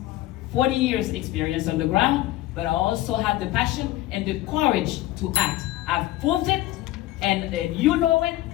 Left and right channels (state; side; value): quieter; right; 15.9 dB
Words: 40 years experience on the ground, but I also have the passion and the courage to act. I've proved it, and you know it,